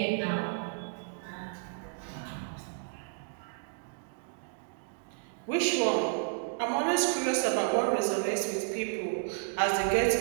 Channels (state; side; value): silent; left; digital silence